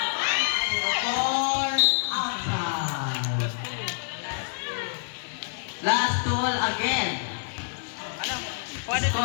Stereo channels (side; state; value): right; silent; digital silence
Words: 0-4 outside. Last duel again.